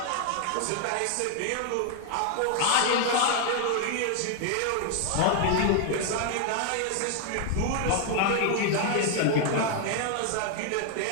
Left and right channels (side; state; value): both; different; correlation 0.00